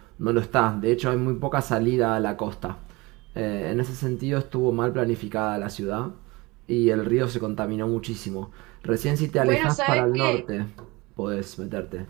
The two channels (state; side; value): quieter; left; 23.4 dB